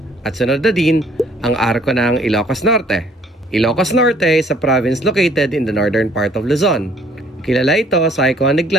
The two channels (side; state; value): both; normal; correlation 0.60